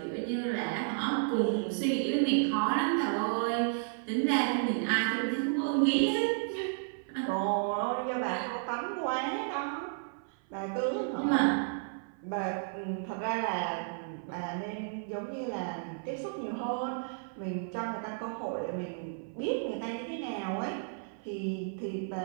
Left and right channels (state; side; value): silent; left; 56 dB below the other